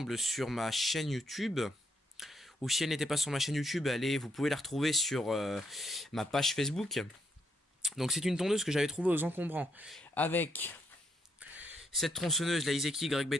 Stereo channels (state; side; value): normal; both; correlation 0.75